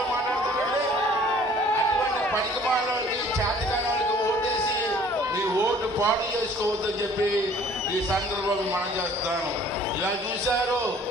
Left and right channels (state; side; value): normal; both; correlation 0.54